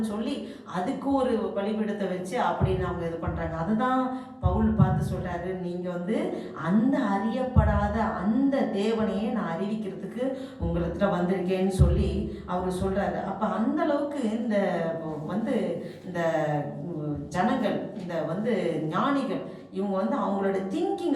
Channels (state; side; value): identical; both; correlation 1.00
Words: சொல்லி அதுக்கு ஒரு பலிபீடத்தை வச்சு அப்படின்னு அவங்க இது பண்ணுறாங்க. அதுதான் பவுல் பார்த்து சொல்கிறாரு, நீங்கள் வந்து அந்த அறியப்படாத அந்த தேவனையே நான் அறிவிக்கிறதுக்கு உங்களிடத்துல வந்திருக்கேன்னு சொல்லி அவர் சொல்கிறாரு. அப்போ அந்த அளவுக்கு இந்த ஜனங்கள், இந்த ஞானிகள், இவங்க வந்து அவங்களோட